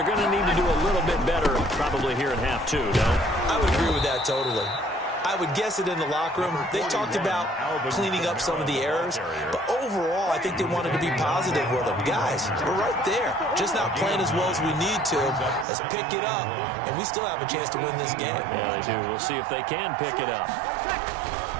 going to need to do a little bit better probably here in half 2, no? I would agree with that totally. I would guess it in the locker room. They talked about cleaning up some of the errors, but overall, I think they wanted to be positive with them. Guys, we're right there. Just not playing as well as we need to. Let's pick it up, and we still have a chance to win this game. Yeah, they do. We'll see if they can pick it up.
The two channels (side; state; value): left; drops out; at 15.7 s